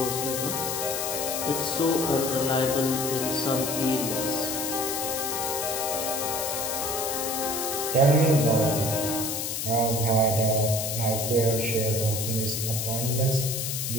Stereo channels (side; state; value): left; noise; hiss, 2 dB below the sound